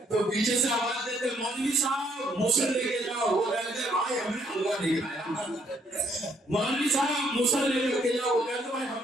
تو پیچھے سے آواز دیتے مولوی صاحب موزل لے کے جاؤ۔ وہ کہتے بھائی ہم نے حلوہ نہیں کھایا۔ مولوی صاحب موزل لے کر کے جاؤ۔ وہ کہتے بھائی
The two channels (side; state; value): both; normal; correlation 0.69